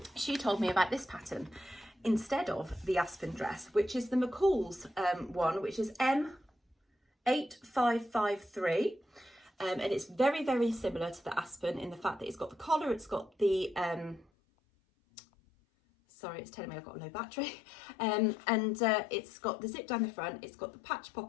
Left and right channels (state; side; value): drops out; right; at 14.2 s